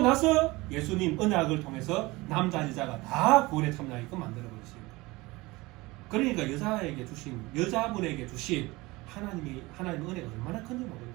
나서 예수님 언약을 통해서 남자 여자가 다 구원에 참여하게끔 만들어버리십니다. 그러니까 여자분에게 주신 하나님의 은혜가 얼마나 큰지 모른다는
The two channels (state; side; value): quieter; left; 21.8 dB